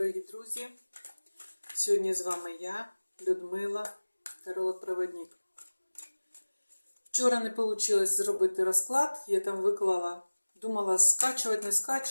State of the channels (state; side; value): inverted; both; correlation -1.00